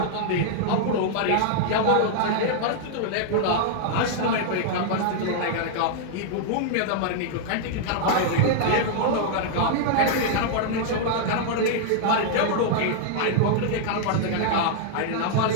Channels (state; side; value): different; both; correlation -0.01